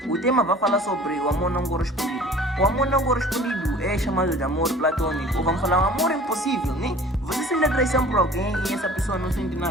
O tema vai falar sobre o amor não correspondido. O amor não correspondido é chamado de amor platônico, ou vamos falar um amor impossível, né? Você sente atração por alguém e essa pessoa não sente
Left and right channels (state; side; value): normal; both; correlation 0.46